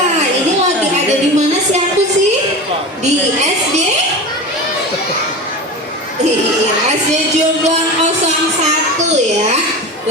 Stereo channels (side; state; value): both; normal; correlation 0.29